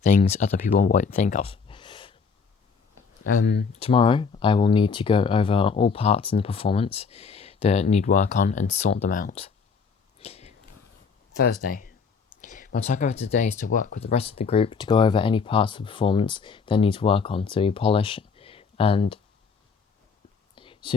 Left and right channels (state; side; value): quieter; right; 5.5 dB